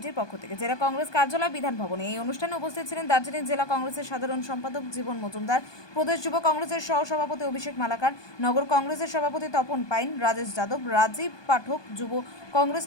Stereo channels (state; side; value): late; right; 1.2 ms